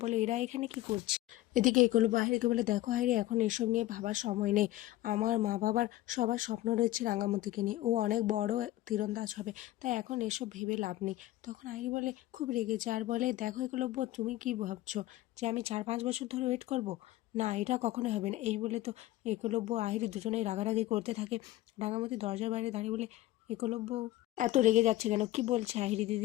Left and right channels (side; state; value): right; quieter; 16.0 dB